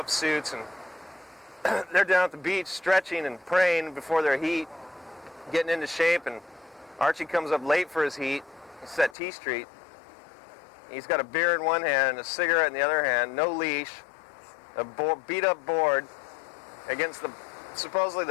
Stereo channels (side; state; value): right; drops out; at 9.2 s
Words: suits, and they're down at the beach stretching and praying before their heat, getting into shape, and Archie comes up late for his heat. It's at T Street. He's got a beer in one hand and a cigarette in the other hand, no leash, a beat-up board against supposedly